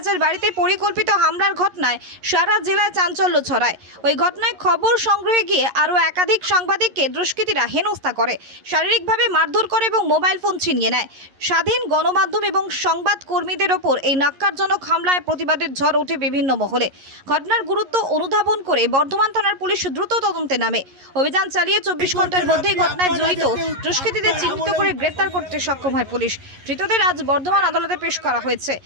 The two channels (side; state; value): left; late; 11 ms